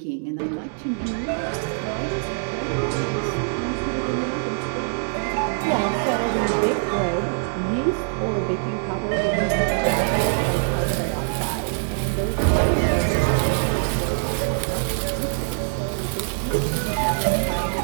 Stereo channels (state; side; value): silent; left; digital silence